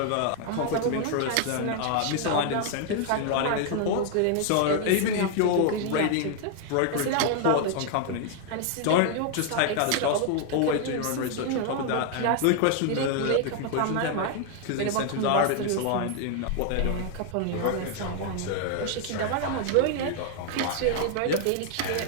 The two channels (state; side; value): different; both; correlation 0.00